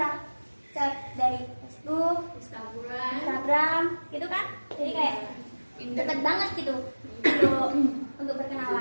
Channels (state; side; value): inverted; both; correlation -1.00